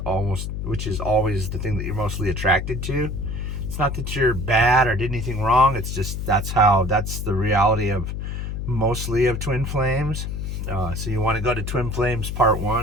the thing that you're mostly attracted to. It's not that you're bad or did anything wrong. It's just that's the reality of mostly of twin flames. So you want to go to Twin Flames Part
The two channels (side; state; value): left; noise; hum, 4 dB below the sound